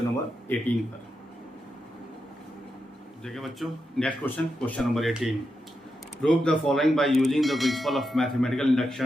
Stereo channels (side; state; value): both; normal; correlation 0.86